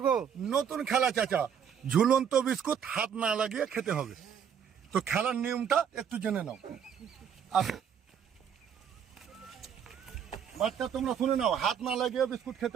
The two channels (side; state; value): left; quieter; 8.0 dB